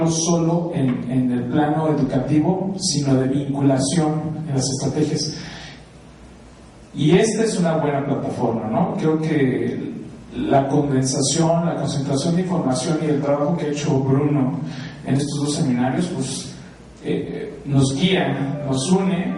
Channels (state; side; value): identical; both; correlation 1.00